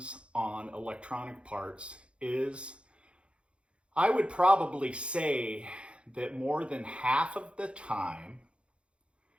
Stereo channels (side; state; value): left; late; 0.058 ms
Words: on electronic parts is, I would probably say that more than half of the time,